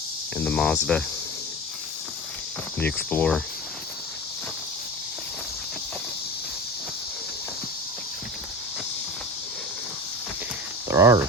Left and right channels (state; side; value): normal; both; correlation 0.30